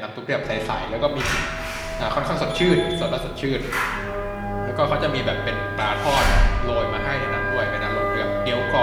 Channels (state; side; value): identical; both; correlation 1.00